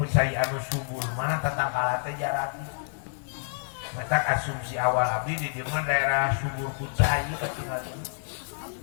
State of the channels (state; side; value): silent; right; 59 dB below the other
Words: anu subur mah tetangkalan teh jararadi mereka asumsi awal abdi di dimana daerah subur kucai